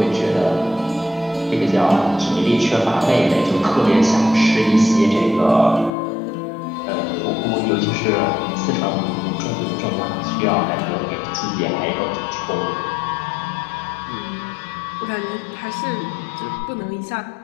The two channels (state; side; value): drops out; right; at 5.9 s